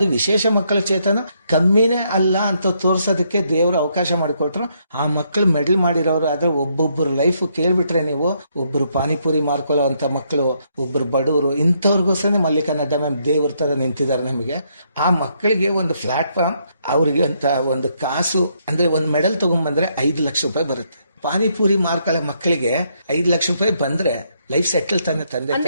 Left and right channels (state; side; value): inverted; both; correlation -0.74